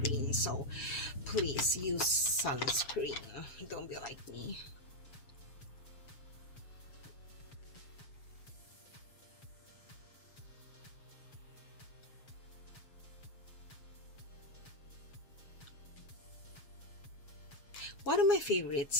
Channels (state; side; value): late; right; 7.3 ms